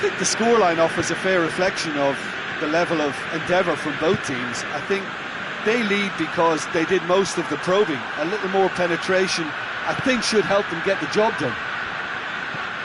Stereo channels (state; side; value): identical; both; correlation 1.00